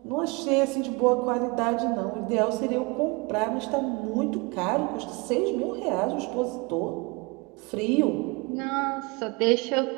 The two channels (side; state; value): left; quieter; 27.2 dB